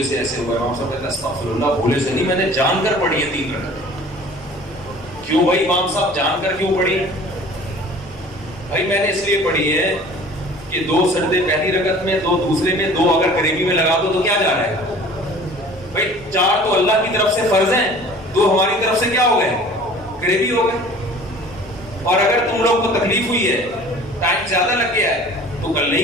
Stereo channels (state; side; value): normal; both; correlation 0.46